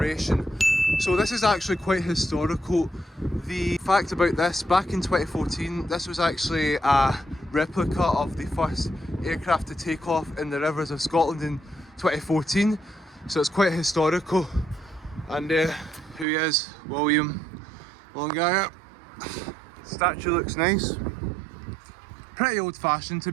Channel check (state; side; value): drops out; left; at 16.2 s